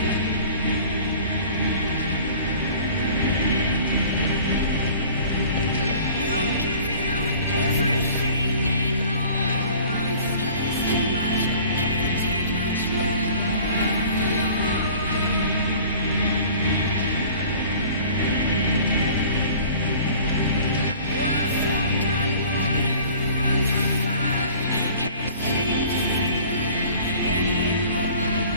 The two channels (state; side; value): inverted; both; correlation -0.47